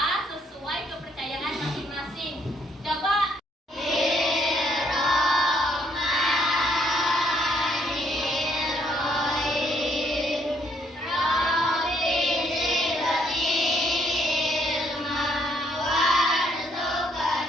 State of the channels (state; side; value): normal; both; correlation 0.69